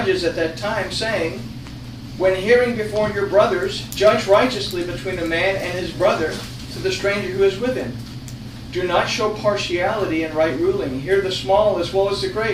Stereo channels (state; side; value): identical; both; correlation 1.00